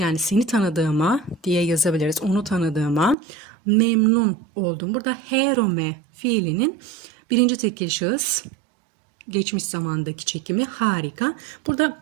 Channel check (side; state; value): left; drops out; at 3.2 s